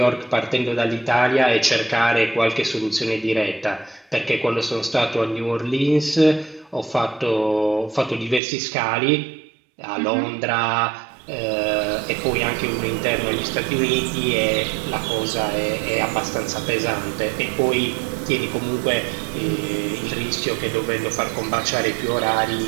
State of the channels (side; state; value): left; drops out; at 8.4 s